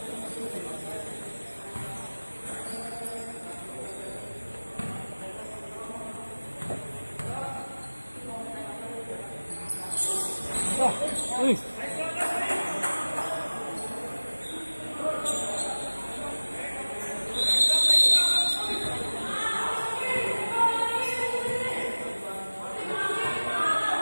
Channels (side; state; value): both; inverted; correlation -1.00